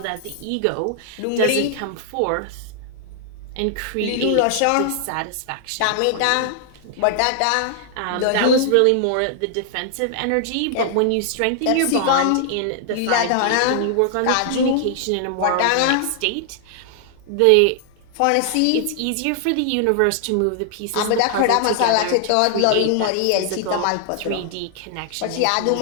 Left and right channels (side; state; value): both; different; correlation 0.00